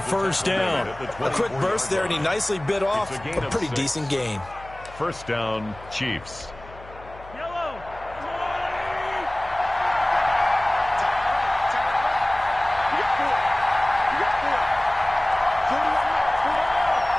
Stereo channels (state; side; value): noise; left; hum, 19 dB below the sound